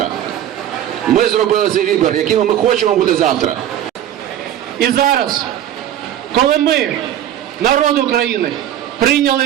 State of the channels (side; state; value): left; quieter; 11.3 dB